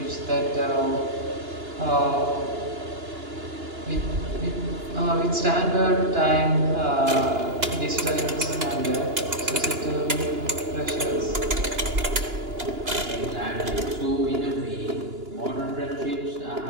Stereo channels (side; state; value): left; late; 2.9 ms